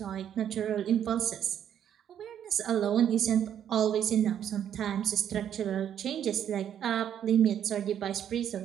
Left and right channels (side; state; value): left; quieter; 9.6 dB